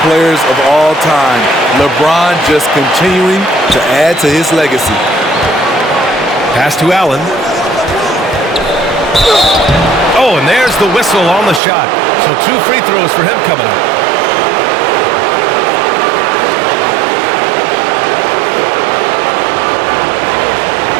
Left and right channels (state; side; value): drops out; left; at 11.6 s